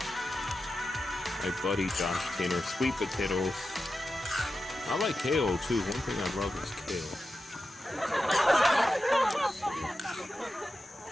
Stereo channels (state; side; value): normal; both; correlation 0.91